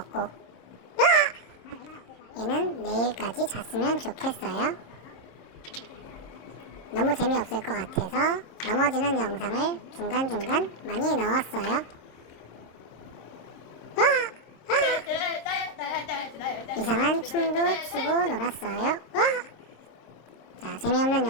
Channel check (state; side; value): late; right; 26 ms